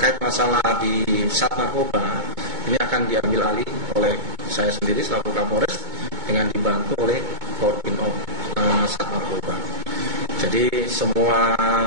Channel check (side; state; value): left; late; 2.2 ms